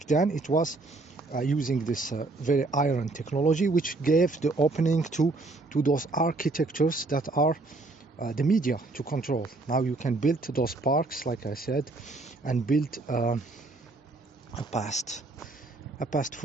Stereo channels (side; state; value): left; quieter; 3.3 dB